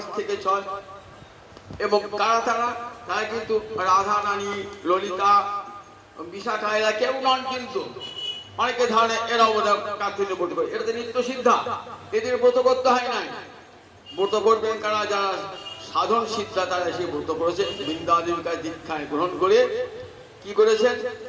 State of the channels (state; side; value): identical; both; correlation 1.00